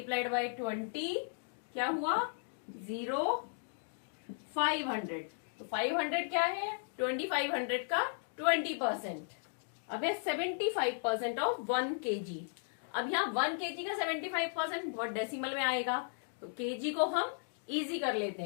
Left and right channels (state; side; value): silent; right; digital silence